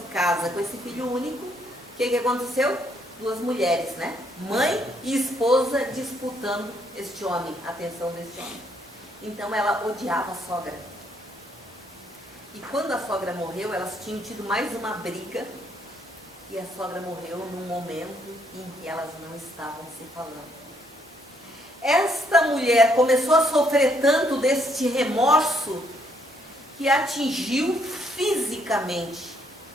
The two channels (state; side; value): normal; both; correlation 0.71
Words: casa com esse filho único, o que aconteceu? Duas mulheres, né? Mãe e esposa disputando este homem, a atenção deste homem. Então ela odiava a sogra. E quando a sogra morreu, elas tinham tido mais uma briga. E a sogra morreu num momento em que elas não estavam se falando. Esta mulher começou a sofrer tanto deste remorso que atingiu fisicamente